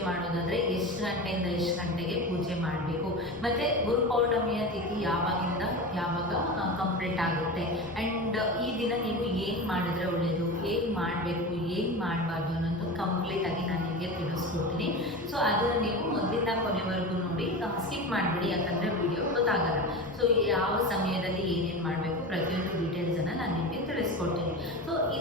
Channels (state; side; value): normal; both; correlation 0.27